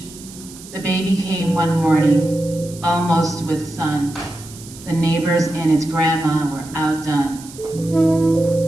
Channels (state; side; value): noise; right; hiss, 17 dB below the sound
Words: The baby came one morning, almost with sun. The neighbors and its grandma were outdone,